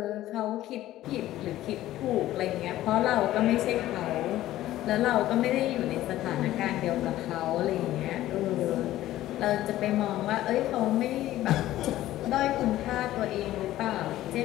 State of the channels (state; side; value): quieter; right; 14.6 dB